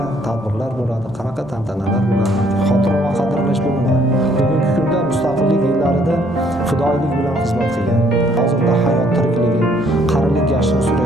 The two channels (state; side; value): normal; both; correlation 0.64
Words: tadbirlar bo'ladi, qanaqa tantanalar bo'ladi, xotira va qadrlash bo'limi. Bugungi kunda mustaqillik yillarida fidoyilik bilan xizmat qilgan, hozirda hayot tirikligi, qarilik yashini